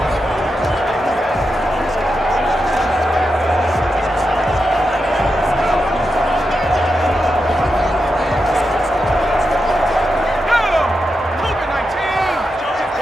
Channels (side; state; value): both; normal; correlation 0.87